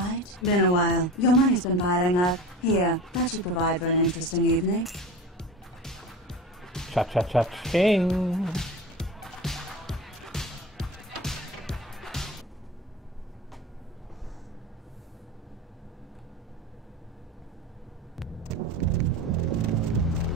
Been a while. Your money's been piling up. Here, that should provide for an interesting evening. Cha-cha-cha-ching!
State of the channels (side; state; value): both; normal; correlation 0.32